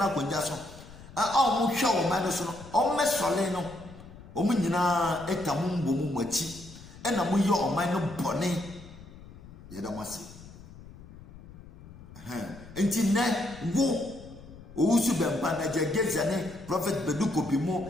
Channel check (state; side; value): noise; left; rumble, 18 dB below the sound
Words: kwanja so omo hwe omo no so no omo mesole no omo nyina etamu mbomu machi ena mo ye oman no bone ye da mase enti ne wo owusu bempa na jegeza ne prophet beduko